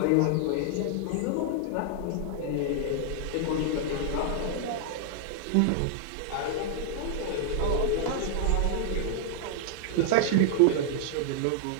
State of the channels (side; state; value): both; different; correlation 0.00